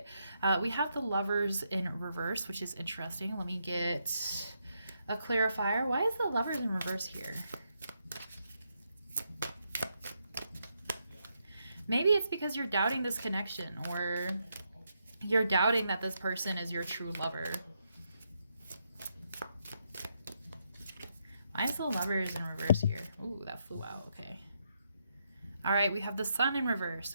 We have the Lovers in reverse, which is interesting. Let me get a clarifier. Why is the Lovers in reverse here? Maybe it's because you're doubting this connection, or you're doubting that this person is your true lover. Why is the Lovers in reverse here? Ooh, that flew out. Okay. All right, we have the Sun in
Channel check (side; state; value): both; inverted; correlation -0.80